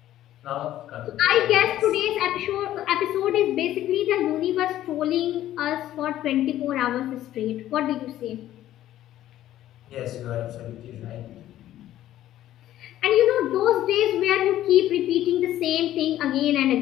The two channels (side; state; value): right; quieter; 13.1 dB